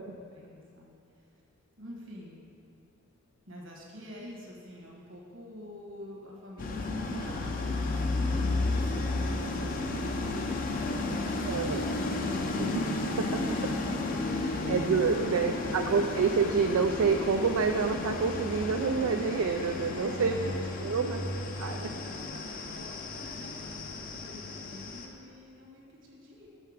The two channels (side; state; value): both; normal; correlation 0.19